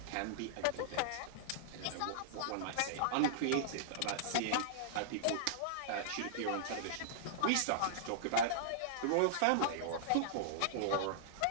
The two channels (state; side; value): different; both; correlation -0.01